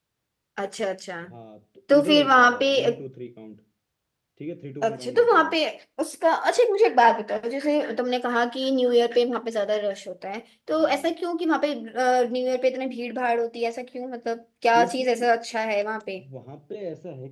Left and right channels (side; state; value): both; identical; correlation 1.00